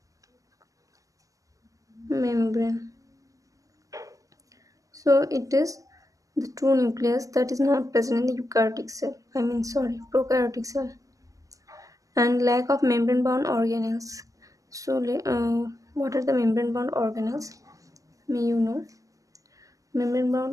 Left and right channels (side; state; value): left; late; 0.16 ms